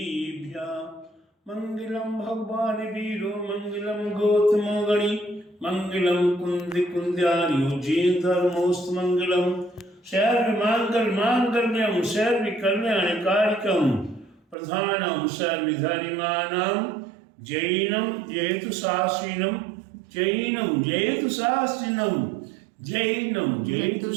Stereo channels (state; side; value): drops out; left; at 14.6 s